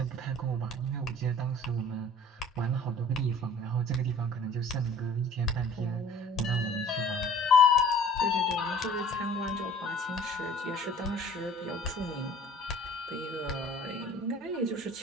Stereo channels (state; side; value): normal; both; correlation 0.49